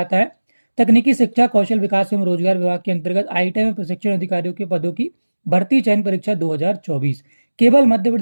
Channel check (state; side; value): inverted; both; correlation -1.00